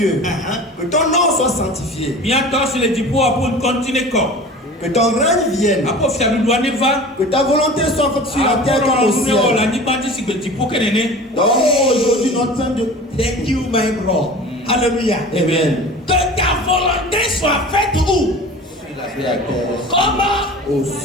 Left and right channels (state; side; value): normal; both; correlation 0.38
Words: que ton nom soit sanctifié. Que ton règne vienne. Que ta volonté soit faite sur la terre comme au ciel. Donc aujourd'hui notre pain de... Thank you, my bro. Alléluia. Amen. Que ta volonté soit faite où? Comment? Au